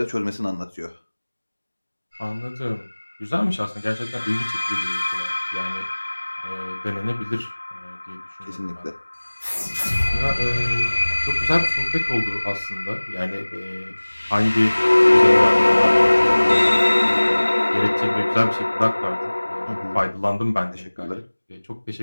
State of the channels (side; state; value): both; inverted; correlation -1.00